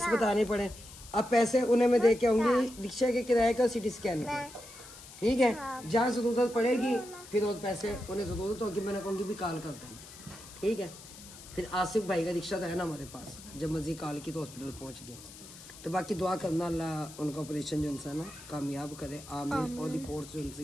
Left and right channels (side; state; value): left; noise; hiss, 17 dB below the sound